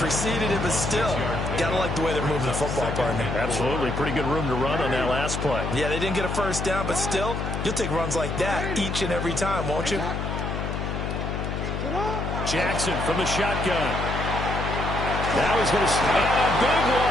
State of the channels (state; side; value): noise; left; hum, 3 dB below the sound